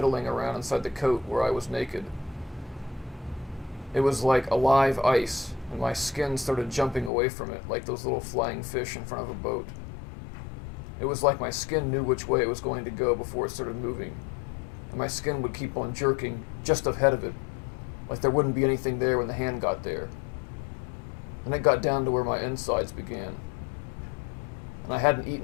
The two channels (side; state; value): right; drops out; at 7.1 s